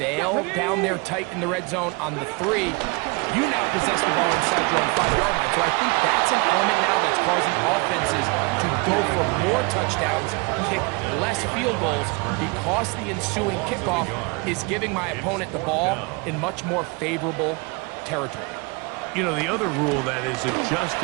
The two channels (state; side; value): quieter; left; 28.9 dB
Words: fail down there tight in the red zone on the 3, you now possess the ball inside your own 5-yard line. So I think that's an element now that's causing offenses to go for more touchdowns, kick less field goals, because the ensuing kickoff is giving my opponent the ball in much more favorable territory. You know, the other rule that is